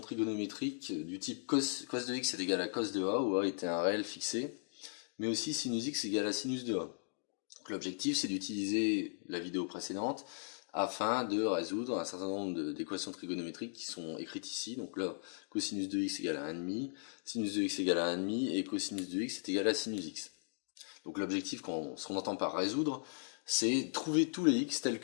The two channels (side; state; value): right; silent; digital silence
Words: trigonométriques du type cos de x est égal à cos de a, où a était un réel fixé, mais aussi sinus x égale à sinus de a. L'objectif, c'est d'utiliser la vidéo précédente afin de résoudre un certain nombre d'équations trigonométriques qui sont écrites ici. Donc là, cosinus de x égale à 1,5, sinus de x égale à 1,5 et cosinus de x est égal à sinus x. Donc l'objectif, ce qu'on entend par résoudre, c'est trouver tous les x tels